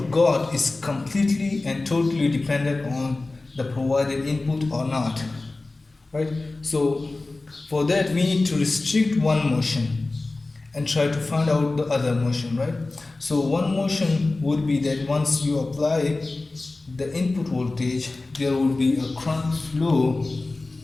got is completely and totally dependent on the provided input or not, right? So for that we need to restrict one motion and try to find out the other motion, right? So one motion would be that once you apply the input voltage, there will be a current flow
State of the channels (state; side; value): quieter; right; 3.2 dB